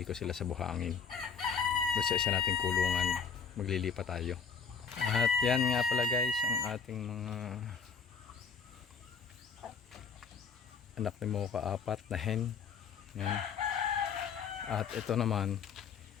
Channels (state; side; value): quieter; right; 6.2 dB